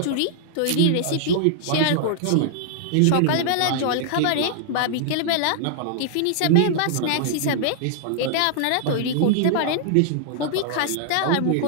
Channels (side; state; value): both; different; correlation -0.01